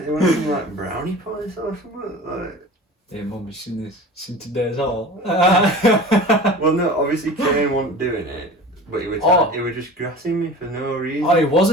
They wanted some like brownie points or something like. Hey mum, you seen this? Seen today's haul? Well, no, obviously Kane wasn't doing it, but he was just grassing me for no reason. Oh, he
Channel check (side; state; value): both; normal; correlation 0.37